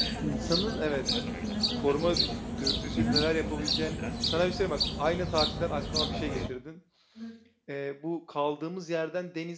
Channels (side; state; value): both; identical; correlation 1.00